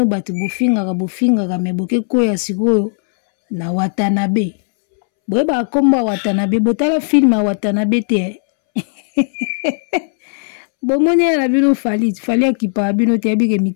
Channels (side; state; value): right; silent; 67 dB below the other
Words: batu bofinga mais boke koya sikoyo na Watanabe. Boyeba komba Watanabe, botala film à Watanabe te. Bomoni ya na bino fali akipa bino te abike